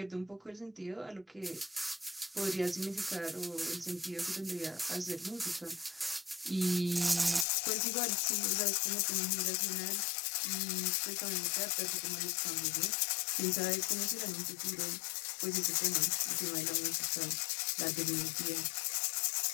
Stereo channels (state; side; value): drops out; right; at 7.5 s